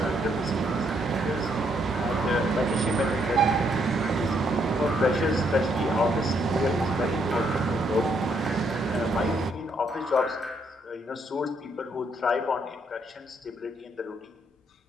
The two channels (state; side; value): normal; both; correlation 0.73